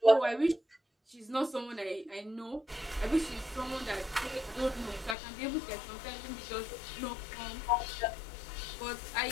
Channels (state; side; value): drops out; right; at 5.2 s